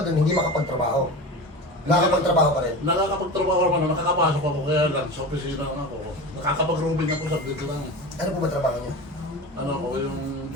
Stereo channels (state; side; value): normal; both; correlation 0.29